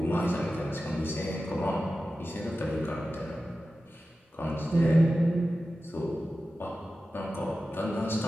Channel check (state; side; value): normal; both; correlation 0.93